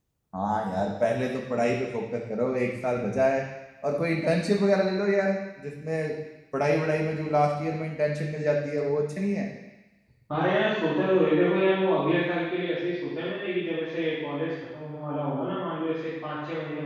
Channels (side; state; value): both; identical; correlation 1.00